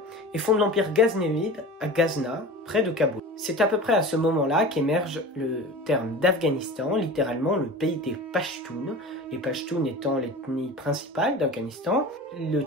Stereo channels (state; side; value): normal; both; correlation 0.35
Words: et fonde l'empire ghaznévide à Ghazna, près de Kaboul. C'est à peu près à ce moment-là qu'émerge le terme d'Afghanistan, littéralement le pays des Pashtuns, les Pashtuns étant l'ethnie principale d'Afghanistan, le